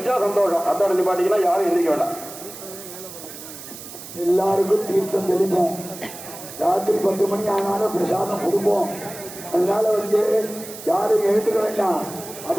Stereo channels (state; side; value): noise; right; hiss, 13 dB below the sound